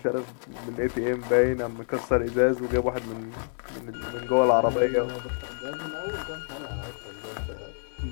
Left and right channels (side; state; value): right; silent; digital silence